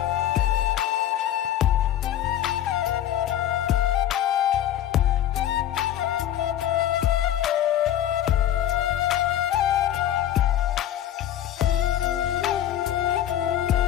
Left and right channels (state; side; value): quieter; right; 11.5 dB